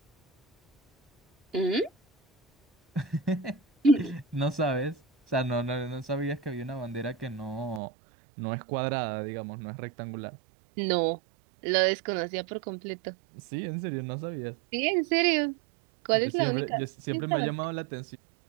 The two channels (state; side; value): drops out; left; at 7.8 s